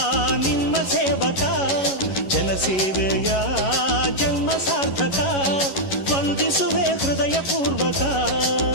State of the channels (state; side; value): late; right; 11 ms